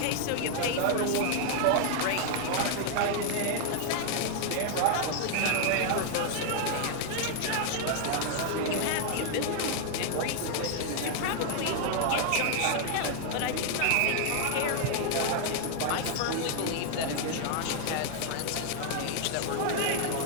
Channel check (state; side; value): different; both; correlation 0.00